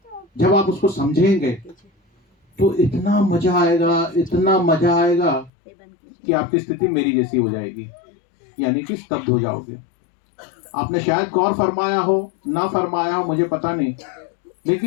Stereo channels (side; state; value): right; drops out; at 5.5 s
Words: जब आप उसको समझेंगे तो इतना मजा आएगा, इतना मजा आएगा कि आपकी स्थिति मेरी जैसी हो जाएगी, यानी कि स्तब्ध हो जाओगे। आपने शायद गौर फरमाया हो, ना फरमाया हो, मुझे पता नहीं,